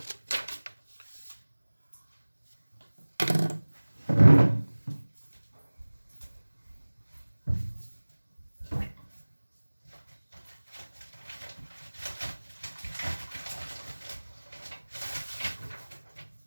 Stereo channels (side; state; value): both; inverted; correlation -1.00